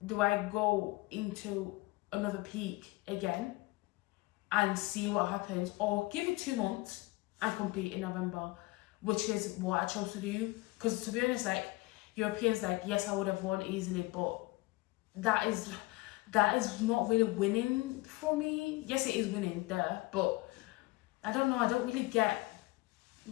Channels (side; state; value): right; quieter; 21.8 dB